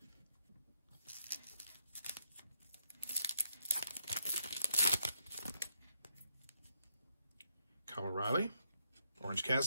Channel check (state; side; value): inverted; both; correlation -0.77